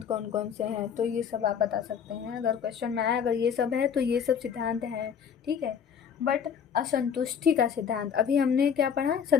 कौन कौन से हैं, तो ये सब आप बता सकते हैं। अगर क्वेश्चन में आया अगर ये सब है तो ये सब सिद्धांत हैं। ठीक है, बट असंतुष्टि का सिद्धांत, अभी हमने क्या पढ़ा?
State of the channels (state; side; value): quieter; right; 7.5 dB